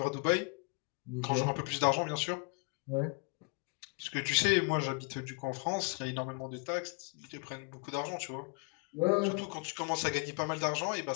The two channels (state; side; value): quieter; right; 35.2 dB